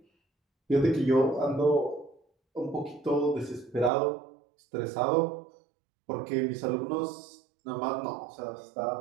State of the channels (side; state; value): left; drops out; at 3.9 s